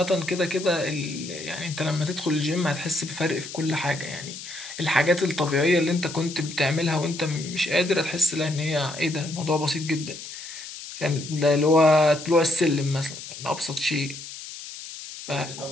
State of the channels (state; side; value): noise; left; hiss, 12 dB below the sound